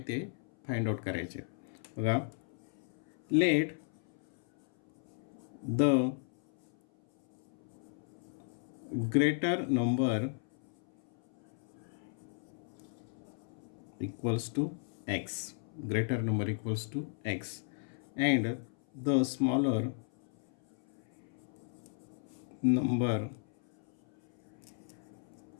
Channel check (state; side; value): silent; right; 54 dB below the other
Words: ते फाइंड आउट करायचे आहेत. बघा, let the greater number equals to x, greater number equals to x, and the smaller number